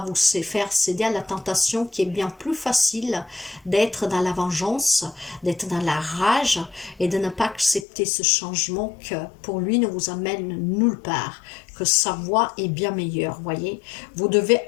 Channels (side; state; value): right; drops out; at 7.9 s